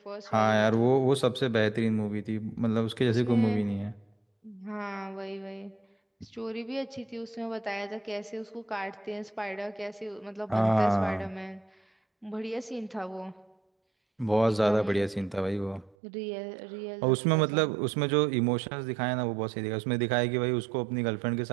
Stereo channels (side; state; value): left; drops out; at 16.0 s